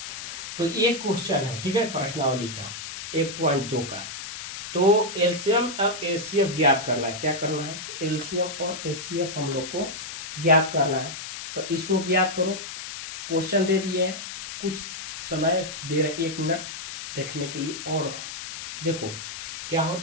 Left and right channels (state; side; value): noise; left; hiss, 9 dB below the sound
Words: तो ये क्वेश्चन है, ठीक है, प्रश्नावली का 1.2 का। तो एलसीएम और एचसीएफ ज्ञात करना है। क्या करना है, एलसीएम और एचसीएफ हम लोग को ज्ञात करना है। तो इसको ज्ञात करो। क्वेश्चन दे दिए हैं, कुछ समय दे रहे 1 मिनट देखने के लिए। और देखो क्या